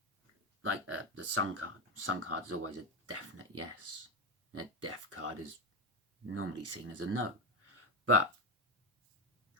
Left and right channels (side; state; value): both; normal; correlation 0.14